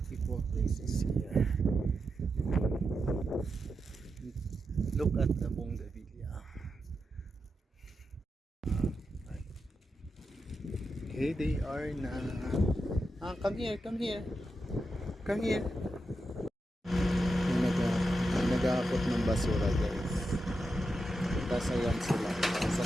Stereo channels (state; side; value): normal; both; correlation 0.87